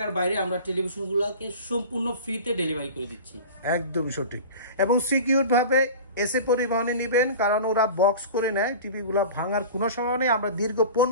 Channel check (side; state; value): both; inverted; correlation -0.36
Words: বাইরে আমরা টেলিভিশনগুলোকে সম্পূর্ণ ফ্রিতে ডেলিভারি করে দিচ্ছি। একদমই সঠিক, এবং সিকিউর ভাবে এসে পরিবহনে নেবেন, কারণ ওরা বক্স করে নেয়, টিভিগুলো ভাঙার কোনো সময় নেই। আমরা দীর্ঘ